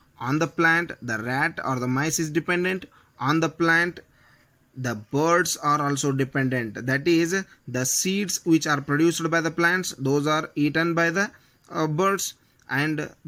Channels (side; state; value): both; identical; correlation 1.00